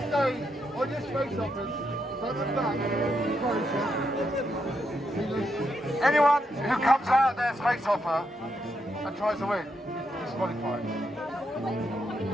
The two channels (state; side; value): normal; both; correlation 0.80